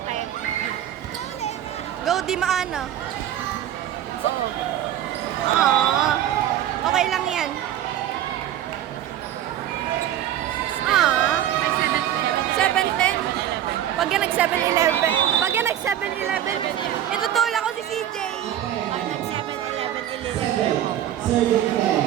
Go, Di Maana. Aww. Okay lang yan. Aww. 7:10. Pag yan nag 7-11. Pag yan nag 7-11, itutulak ko si CJ.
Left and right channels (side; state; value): left; quieter; 11.4 dB